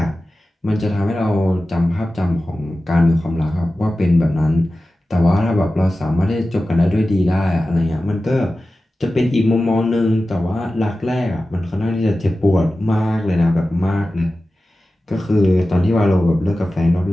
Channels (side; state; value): both; normal; correlation 0.95